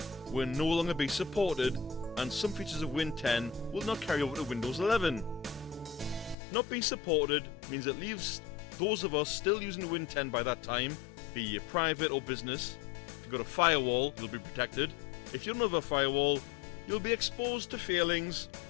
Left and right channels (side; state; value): right; drops out; at 6.4 s